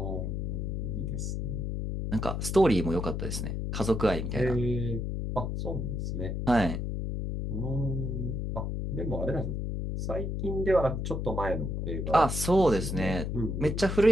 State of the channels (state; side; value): noise; left; hum, 2 dB below the sound